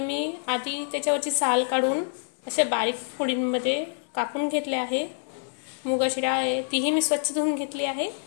आधी त्याच्यावरची साल काढून अशा बारीक फोडींमध्ये कापून घेतले आहे. मुगाची डाळ आहे तीही मी स्वच्छ धुवून घेतली आहे.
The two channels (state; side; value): silent; right; digital silence